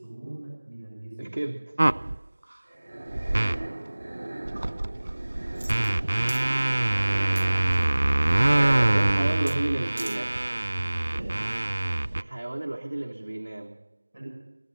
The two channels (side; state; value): both; inverted; correlation -1.00